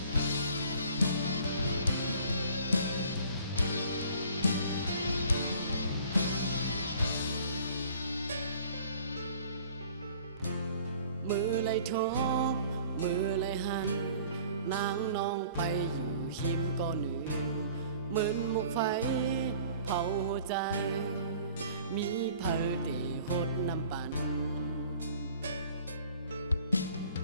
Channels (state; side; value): inverted; both; correlation -0.50